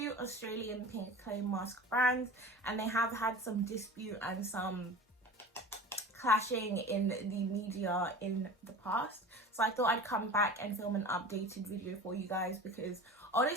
Australian pink clay mask brands and they have had some dispute and some clashing in the media in the past, so I thought I'd come back and film an updated video for you guys, because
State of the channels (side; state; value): both; normal; correlation 0.36